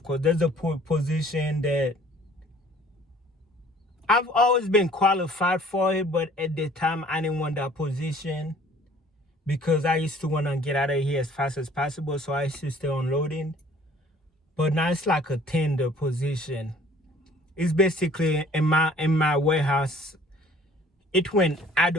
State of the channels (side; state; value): both; normal; correlation 0.53